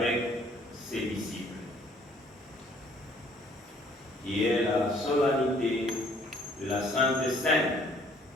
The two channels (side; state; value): both; normal; correlation 0.60